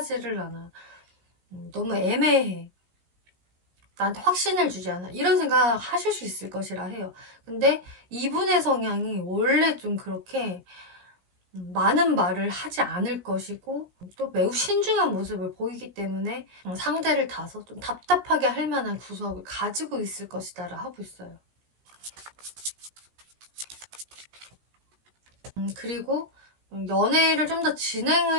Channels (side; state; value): left; late; 17 ms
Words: 않아, 너무 애매해, 나한테 확신을 주지 않아, 이런 생각 하실 수 있을 것이라 해요. 근데 이분의 성향이 원래 좀 그렇게 많은 말을 하지 않을 것이고 또 매우 신중한 모습을 보이기 때문에 상대를 다소 좀 답답하게 할 만한 구석을 가지고 있을 것이다 라 하고 있어요. 그리고 연애를 좀 더